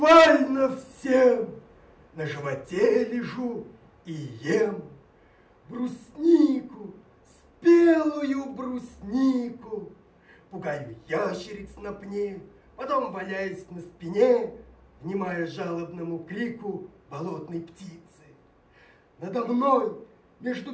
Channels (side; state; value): both; identical; correlation 1.00